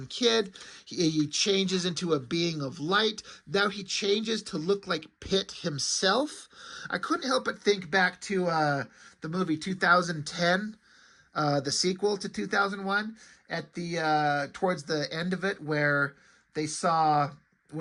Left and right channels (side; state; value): both; identical; correlation 1.00